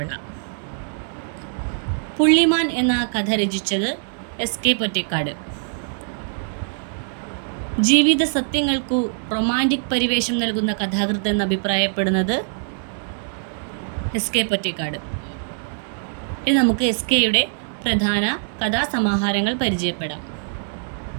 പുള്ളിമാൻ എന്ന കഥ രചിച്ചത് എസ്.കെ. പൊറ്റേക്കാട്. ജീവിത സത്യങ്ങൾക്കു റൊമാൻറ്റിക് പരിവേഷം നൽകുന്ന കഥാകൃത്ത് എന്ന് അഭിപ്രായപ്പെടുന്നത് എസ്.കെ. പൊറ്റേക്കാട്. ഇനി നമുക്ക് എസ്.കെയുടെ പ്രധാന കഥാസമാഹാരങ്ങൾ പരിചയപ്പെടാം.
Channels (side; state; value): left; silent; digital silence